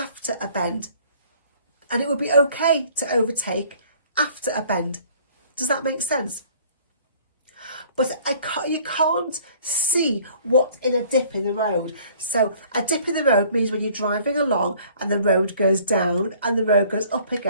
a bend. And it would be okay to overtake after a bend. Does that make sense? But you can't see what's in a dip in the road. So a dip in the road means when you're driving along and the road goes down and the road goes up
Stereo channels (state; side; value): inverted; both; correlation -0.54